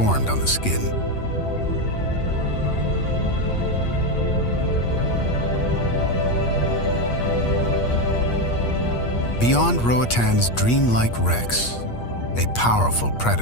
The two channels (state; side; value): late; right; 8.4 ms